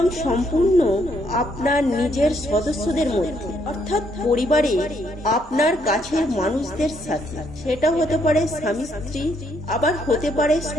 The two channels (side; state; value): both; normal; correlation 0.72